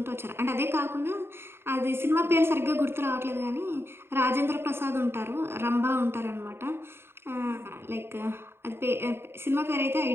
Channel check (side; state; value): left; late; 0.11 ms